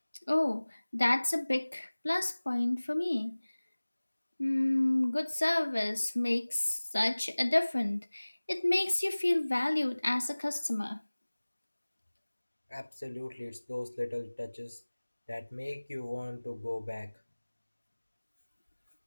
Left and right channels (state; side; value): inverted; both; correlation -1.00